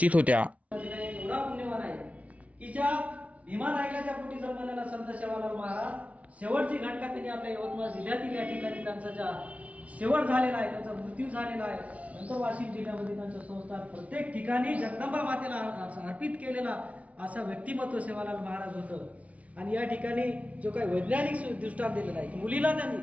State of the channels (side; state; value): left; late; 0.066 ms